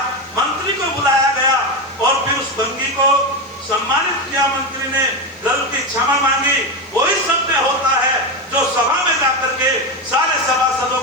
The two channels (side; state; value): both; normal; correlation 0.14